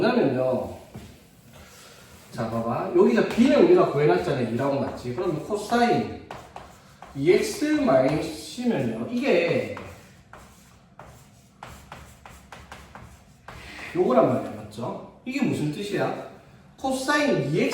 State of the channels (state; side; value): identical; both; correlation 1.00